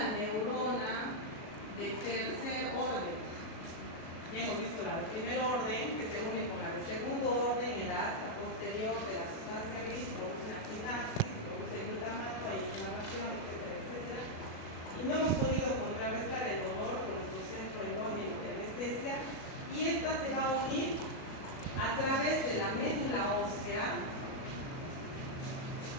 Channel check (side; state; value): right; late; 37 ms